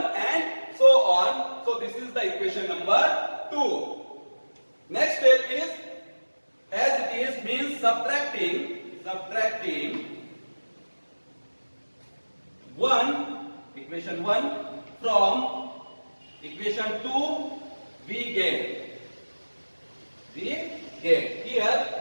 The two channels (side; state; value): both; inverted; correlation -1.00